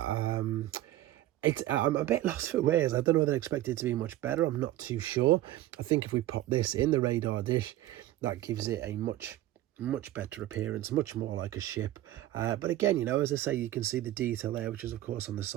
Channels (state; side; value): quieter; left; 14.8 dB